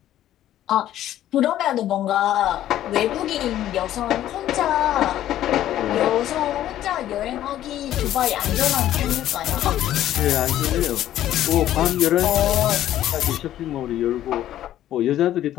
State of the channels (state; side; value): quieter; right; 12.5 dB